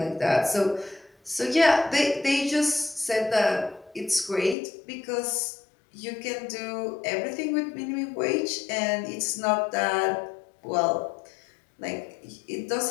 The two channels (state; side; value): drops out; right; at 4.5 s